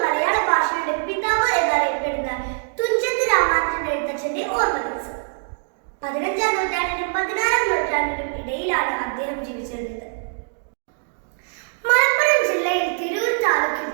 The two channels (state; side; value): silent; left; digital silence